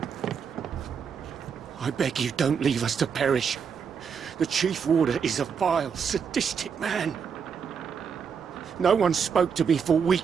I beg you, don't leave us to perish. The Chief Warder is a vile, sadistic man. No one spoke to me for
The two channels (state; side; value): quieter; left; 6.7 dB